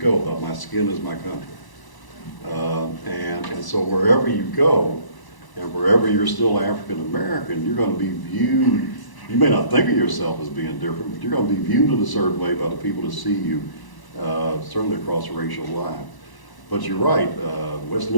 about my skin is my country. And so wherever you go, and wherever you're still African American, you're going to be viewed, you may not think of yourself as being different, but you're going to be viewed in a certain way by the people that see you, certainly across the racial line. But you're right, West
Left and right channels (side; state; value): right; late; 1.0 ms